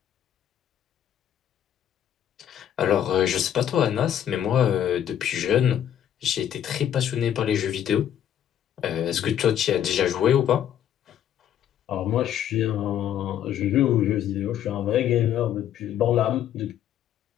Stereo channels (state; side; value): quieter; right; 10.2 dB